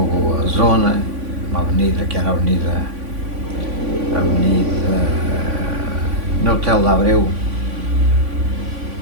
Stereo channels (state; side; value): late; left; 3.5 ms